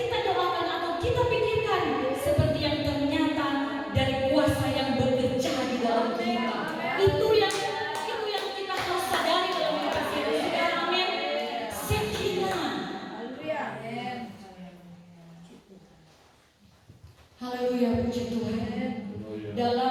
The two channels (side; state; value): both; identical; correlation 1.00